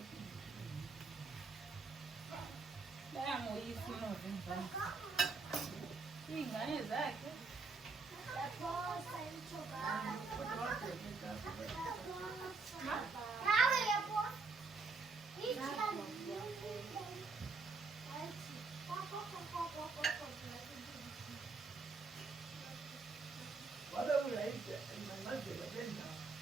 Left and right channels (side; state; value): left; quieter; 4.1 dB